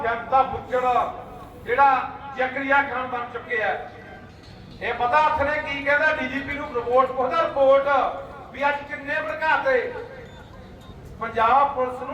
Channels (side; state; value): both; identical; correlation 1.00